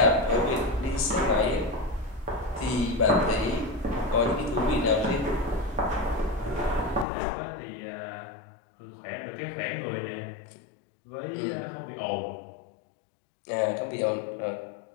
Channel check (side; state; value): right; drops out; at 7.1 s